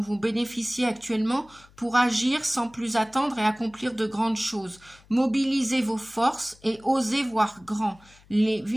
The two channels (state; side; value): noise; left; hum, 27 dB below the sound